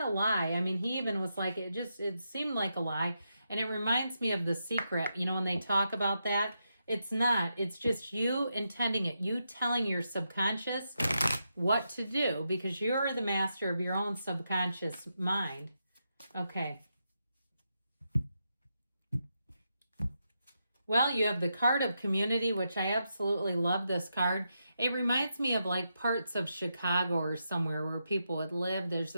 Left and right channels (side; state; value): both; inverted; correlation -0.85